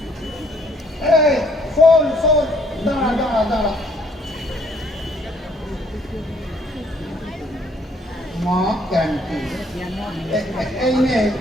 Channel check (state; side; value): normal; both; correlation 0.64